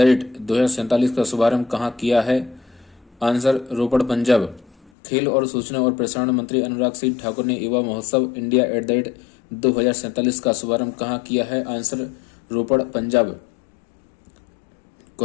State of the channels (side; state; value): right; drops out; at 4.9 s